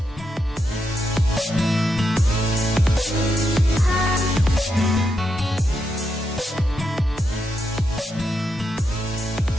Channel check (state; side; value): normal; both; correlation 0.83